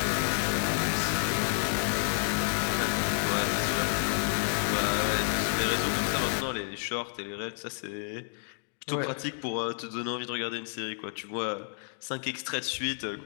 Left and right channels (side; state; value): right; silent; digital silence